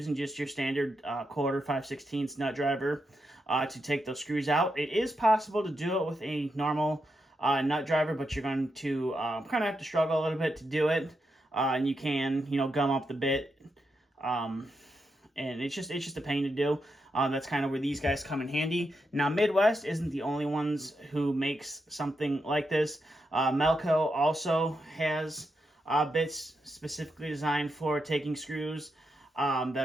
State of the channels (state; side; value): normal; both; correlation 0.85